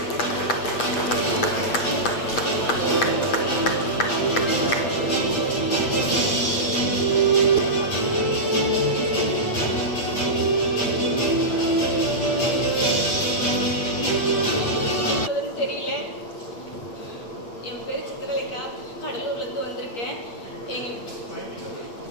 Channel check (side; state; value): right; late; 8.4 ms